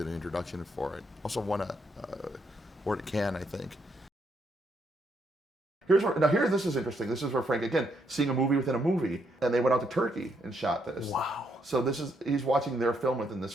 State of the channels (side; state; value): both; normal; correlation 0.75